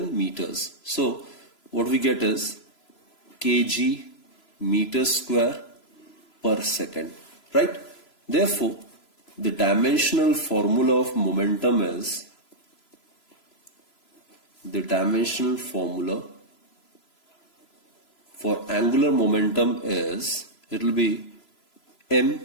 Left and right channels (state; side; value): late; right; 3.0 ms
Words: meters. So what we get is kg meter square per second, right? Therefore, the dimensional formula of momentum is, the dimensional formula for angular momentum is, it will be m